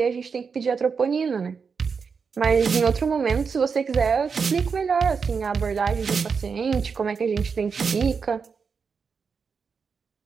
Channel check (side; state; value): left; quieter; 5.7 dB